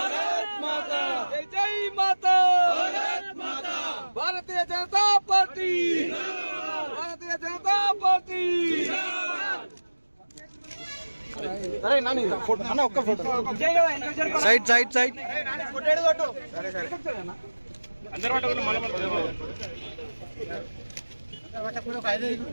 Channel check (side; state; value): both; inverted; correlation -1.00